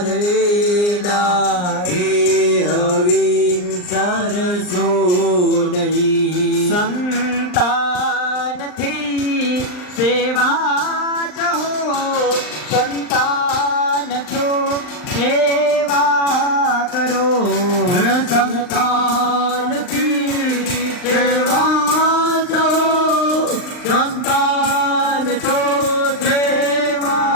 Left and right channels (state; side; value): late; right; 39 ms